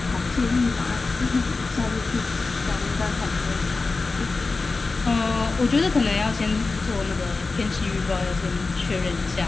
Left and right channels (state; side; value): quieter; right; 3.9 dB